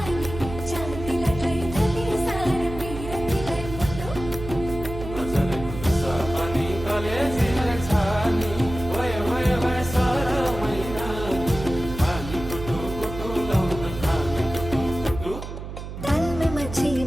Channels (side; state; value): right; noise; hum, 9 dB below the sound